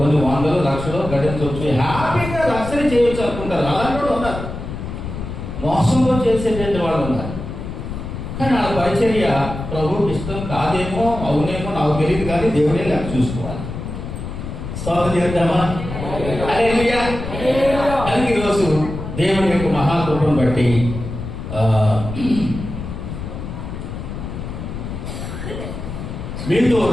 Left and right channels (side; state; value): left; noise; rumble, 7 dB below the sound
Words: 100 లక్షలు గడించవచ్చు, హ్యాపీగా రక్షణ చేయొచ్చు అనుకుంటారు. అలాంటి కూడా ఉన్నారు, మోసంలో చేసేటువంటి వాళ్ళు ఉన్నారు. కానీ ఆ పరిచర్య ప్రభువుకి ఇష్టం కాదేమో, అవునేమో నాకు తెలియదు, కానీ దేవుడే నాకు చూసుకోవాలి. స్తోత్రం చేద్దామా? హల్లెలూయా. అందుకే ఈరోజు దేవుని యొక్క మహాకృపను బట్టి మీతో